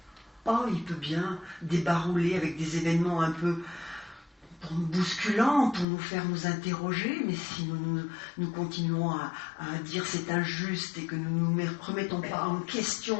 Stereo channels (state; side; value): drops out; right; at 5.9 s